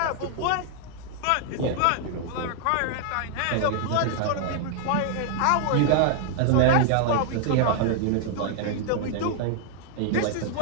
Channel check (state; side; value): different; both; correlation 0.00